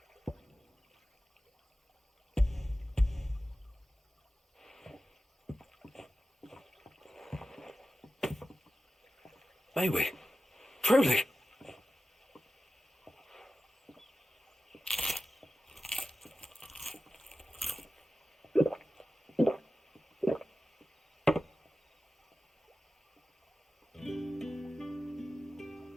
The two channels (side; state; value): both; normal; correlation 0.94